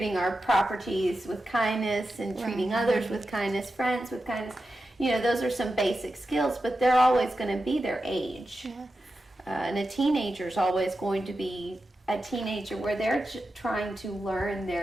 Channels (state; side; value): normal; both; correlation 0.91